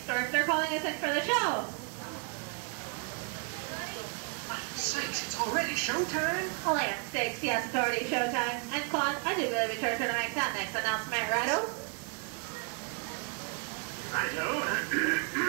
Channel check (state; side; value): quieter; left; 33.8 dB